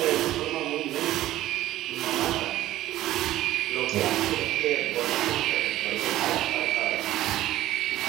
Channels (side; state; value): left; quieter; 14.7 dB